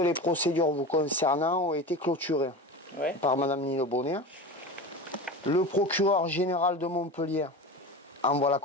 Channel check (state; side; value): normal; both; correlation 0.29